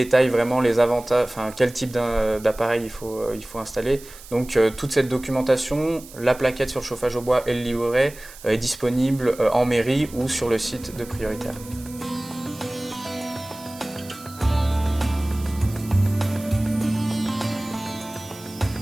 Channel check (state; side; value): noise; right; hiss, 18 dB below the sound